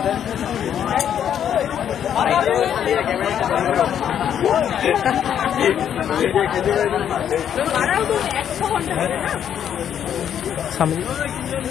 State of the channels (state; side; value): quieter; right; 9.3 dB